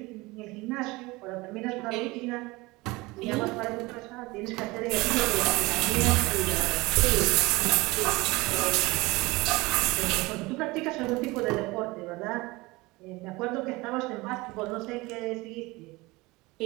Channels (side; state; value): left; quieter; 22.4 dB